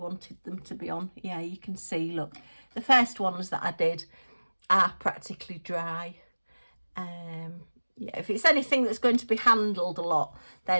them to be on. Yeah, you can see, look, the first ones that I did are practically dry. Yeah, if it's anything that's going to be handled a lot,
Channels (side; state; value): both; inverted; correlation -1.00